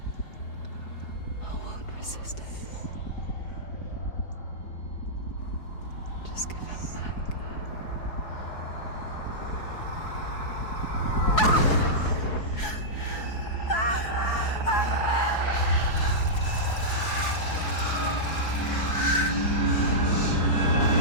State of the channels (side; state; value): right; late; 4.7 ms